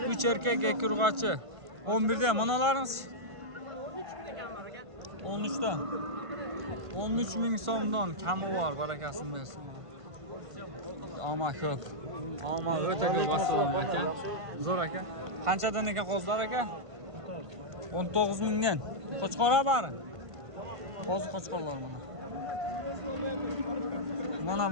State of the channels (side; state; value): left; late; 1.5 ms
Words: 3 erkak, 2 urg'ochi. 11 dan manalarimiz 13 dan. 13 ming so'mdan kami bor, barakasini bersin. Ama ko'p. Ama o'ta ko'p assalomu aka. Zo'r aka. Qanchadan ekan qo'zlar aka? 19 mingdan. Qo'chqora bari. Qo'zi qo'chqorlar mana. Mana